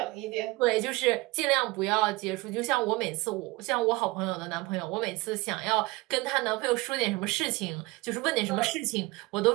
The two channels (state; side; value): quieter; left; 22.4 dB